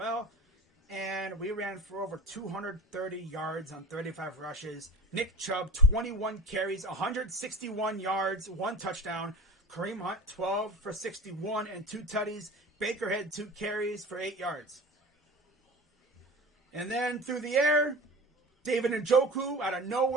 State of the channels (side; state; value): both; normal; correlation 0.34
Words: And we ran for over 230 yards on 35 rushes. Nick Chubb, 21 carries, 161 yards, 1 touchdown. Kareem Hunt, 12 for 61 and 2 tutties. Baker had 2 carries for 8 yards. And then through the air, David Njoku, out of